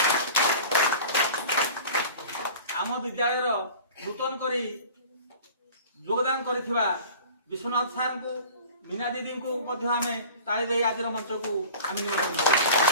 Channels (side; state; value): both; inverted; correlation -0.41